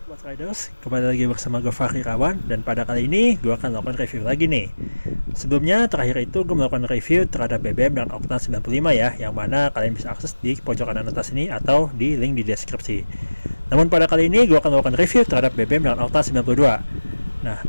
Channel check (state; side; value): inverted; both; correlation -1.00